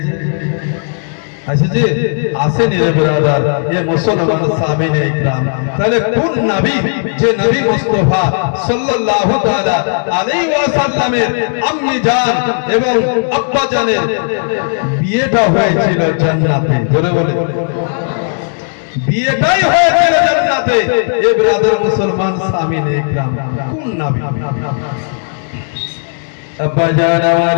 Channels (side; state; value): right; silent; digital silence